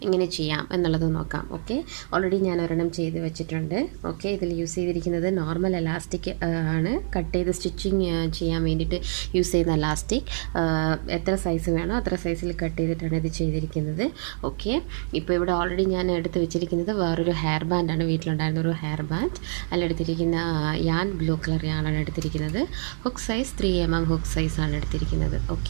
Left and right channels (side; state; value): left; silent; digital silence